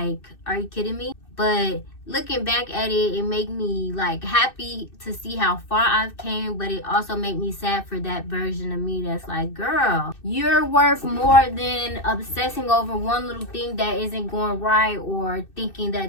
are you kidding me? But looking back at it, it made me like happy to see how far I've came, but it also made me sad for that version of me that's like, girl, you're worth more than obsessing over one little thing that isn't going right, or thinking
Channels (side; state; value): right; late; 2.6 ms